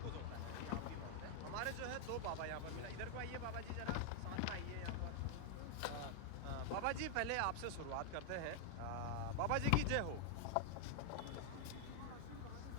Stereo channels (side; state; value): both; different; correlation 0.00